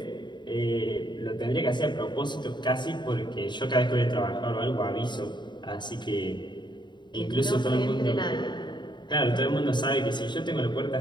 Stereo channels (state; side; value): late; right; 0.22 ms